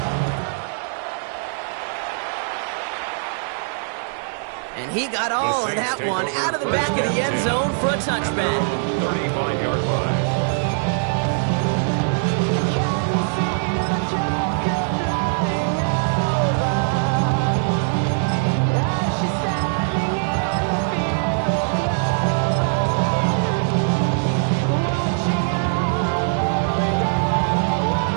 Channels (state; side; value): silent; left; digital silence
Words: And he got all of that one out of the back of the end zone for a touchback. 35-yard line.